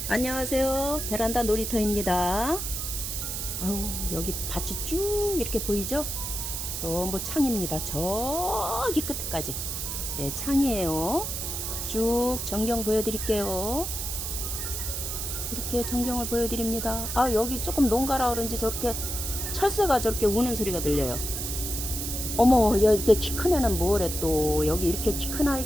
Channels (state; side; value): noise; right; hiss, 4 dB below the sound